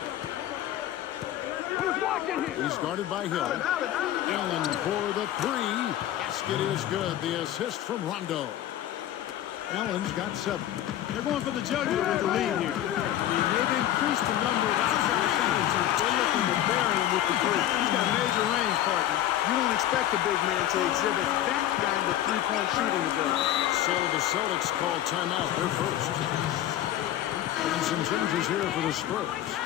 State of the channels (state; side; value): quieter; right; 12.4 dB